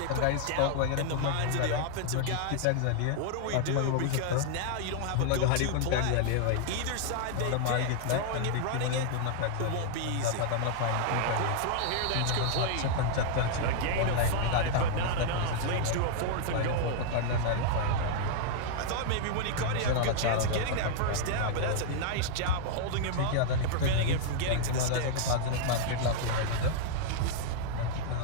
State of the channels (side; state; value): both; different; correlation -0.01